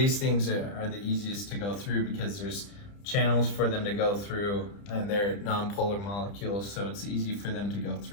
things are the easiest to go through because there's channels for them to go through, and they're non-polar molecules, so it's easy for them to go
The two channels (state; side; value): late; right; 30 ms